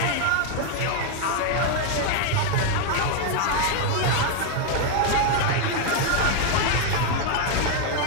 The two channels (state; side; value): different; both; correlation 0.01